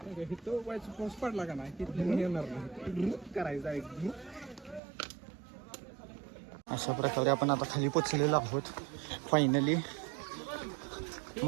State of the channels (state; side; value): drops out; left; at 4.8 s